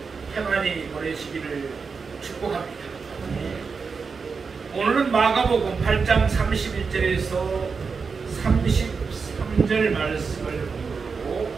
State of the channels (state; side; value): quieter; left; 5.2 dB